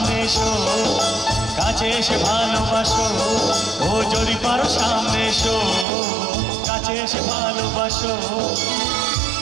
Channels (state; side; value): drops out; left; at 5.9 s